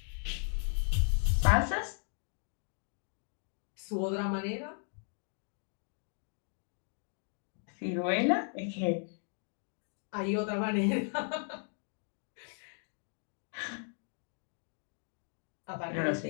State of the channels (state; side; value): silent; right; 54 dB below the other